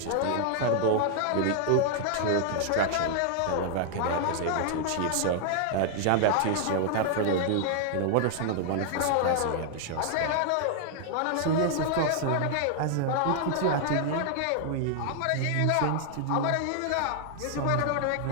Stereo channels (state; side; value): different; both; correlation 0.00